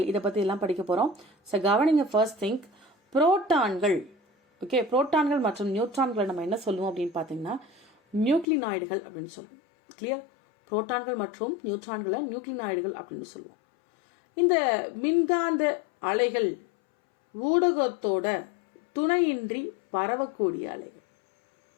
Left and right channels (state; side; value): drops out; right; at 8.5 s